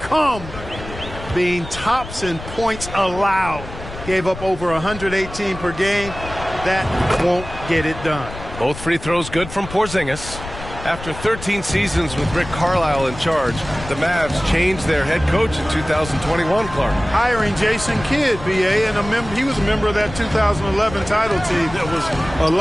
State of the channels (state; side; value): noise; left; rumble, 12 dB below the sound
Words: being tops in points allowed. Gave up over 118 per game. That won't get it done. Both free throws good from Porzingis. After 13 seasons with Rick Carlisle in charge, the Mavs changed their head coach in 2021, Clark. Hiring Jason Kidd, BA, and he was a member of that 2011 title team. That was a